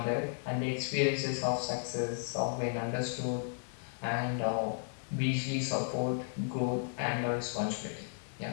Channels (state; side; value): silent; right; digital silence